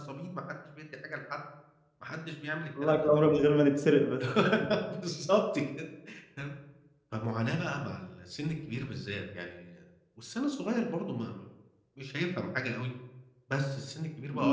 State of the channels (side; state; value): both; identical; correlation 1.00